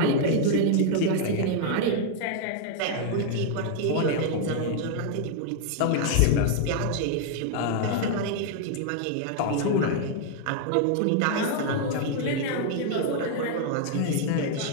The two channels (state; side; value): different; both; correlation 0.00